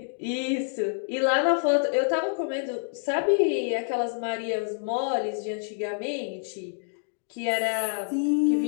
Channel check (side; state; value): right; silent; digital silence